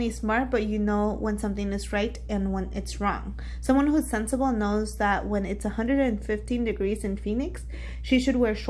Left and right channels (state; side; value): identical; both; correlation 1.00